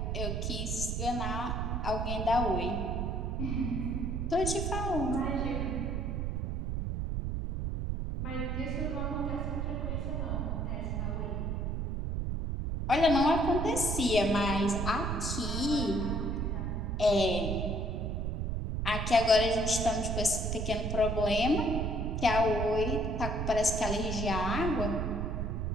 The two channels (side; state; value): right; noise; rumble, 1 dB below the sound